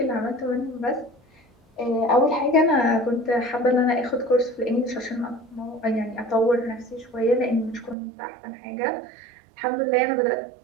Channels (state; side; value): drops out; left; at 8.0 s